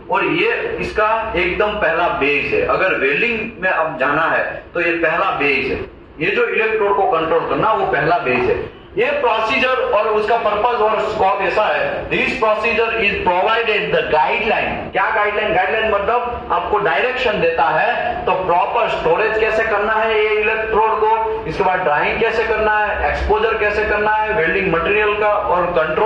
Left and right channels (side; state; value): both; identical; correlation 1.00